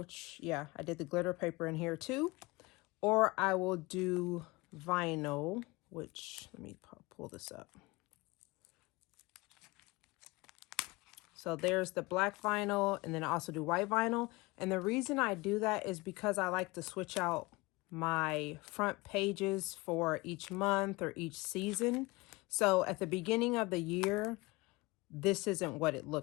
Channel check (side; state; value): right; quieter; 23.3 dB